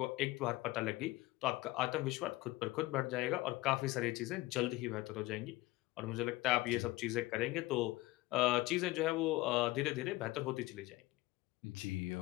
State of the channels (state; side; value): quieter; right; 19.6 dB